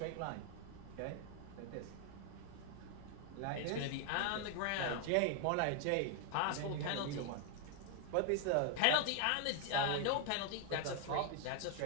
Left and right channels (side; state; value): both; different; correlation 0.00